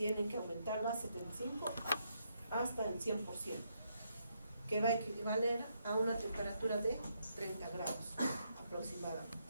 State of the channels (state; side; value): inverted; both; correlation -0.78